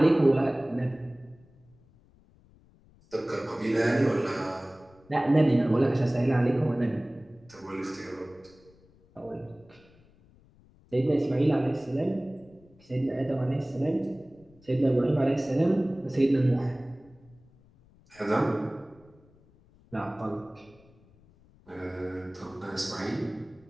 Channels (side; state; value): left; noise; rumble, 28 dB below the sound